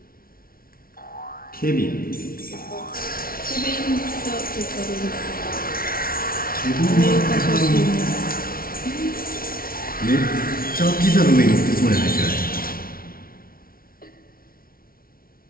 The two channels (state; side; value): late; right; 0.43 ms